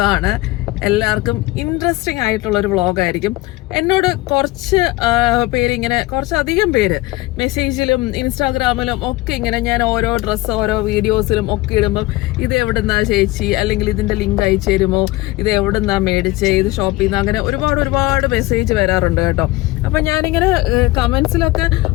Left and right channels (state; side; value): quieter; right; 19.7 dB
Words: എല്ലാവർക്കും ഇൻട്രസ്റ്റിംഗ് ആയിട്ടുള്ളൊരു വ്ളോഗായിരിക്കും. എന്നോട് കുറച്ചധികം പേര് മെസ്സേജിലും ഇൻസ്റ്റാഗ്രാമിലും ഒക്കെ ഇങ്ങനെ ഞാൻ ഓരോ ഡ്രസ്സ് ഓരോ വീഡിയോസിലും ഒക്കെ ഇടുമ്പം ഇത് എവിടുന്നാ ചേച്ചി, അല്ലെങ്കിൽ ഇതിന്റെ ലിങ്ക് അയച്ചു തരുമോ, ഇത് എവിടുന്നാ മേടിച്ചേ, ഇത് ഷോപ്പ് ചെയ്യുന്ന, അങ്ങനെ ഒരുപാട് മെസ്സേജ് വരാറുണ്ട് കേട്ടോ. അപ്പൊ ഞാനിങ്ങനെ കമന്റ്സിലൊക്കെ